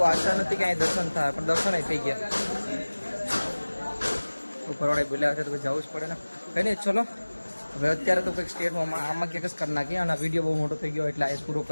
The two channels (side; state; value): both; inverted; correlation -1.00